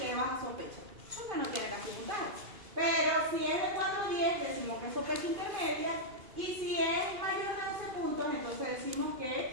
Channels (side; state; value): left; late; 2.5 ms